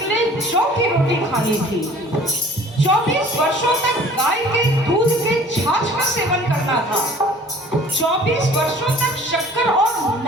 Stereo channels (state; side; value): normal; both; correlation 0.50